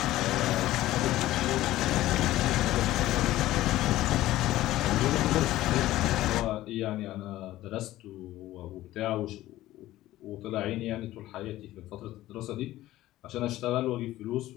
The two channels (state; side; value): quieter; right; 15.5 dB